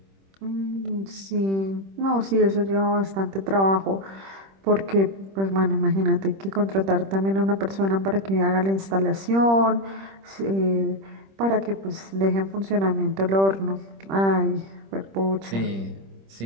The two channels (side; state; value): left; late; 26 ms